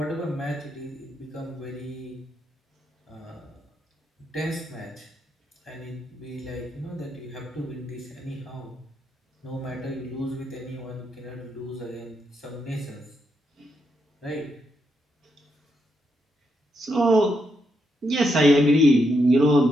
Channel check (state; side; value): normal; both; correlation 0.80